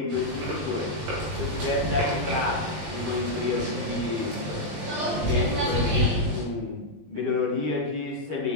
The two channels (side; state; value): left; late; 20 ms